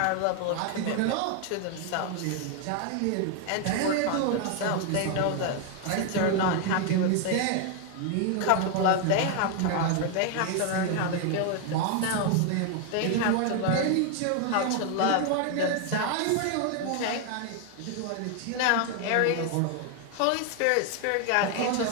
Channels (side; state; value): both; different; correlation 0.00